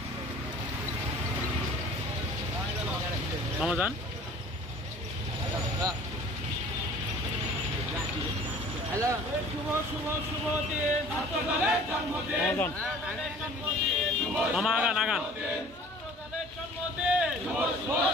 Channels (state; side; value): normal; both; correlation 0.48